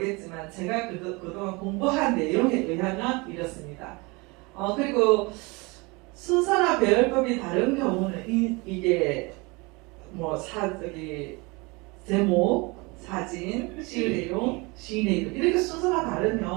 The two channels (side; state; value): left; quieter; 26.6 dB